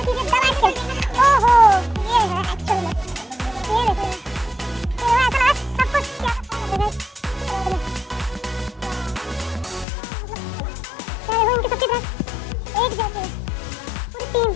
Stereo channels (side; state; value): right; drops out; at 9.9 s